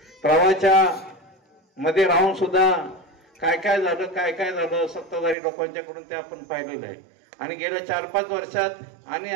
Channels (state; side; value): drops out; left; at 5.4 s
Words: प्रवाहाच्या मध्ये राहून सुद्धा काय काय झालं सत्ताधारी लोकांच्याकडून ते आपण पाहिलेलं आहे. आणि गेल्या 4-5 वर्षात आणि